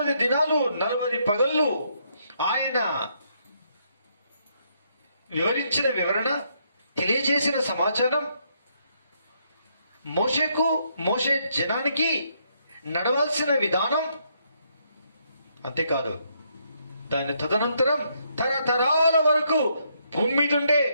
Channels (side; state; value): both; inverted; correlation -0.74